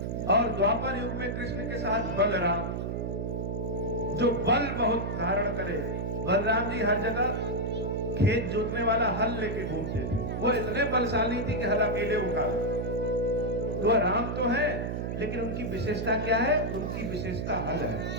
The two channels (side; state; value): right; noise; hum, 2 dB below the sound